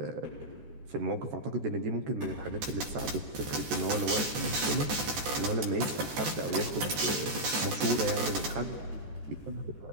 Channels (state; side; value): late; left; 14 ms